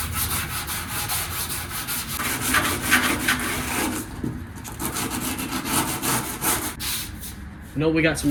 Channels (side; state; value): both; identical; correlation 1.00